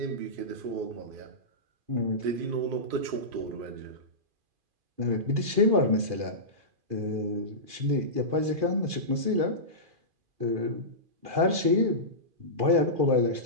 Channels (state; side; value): late; left; 2.4 ms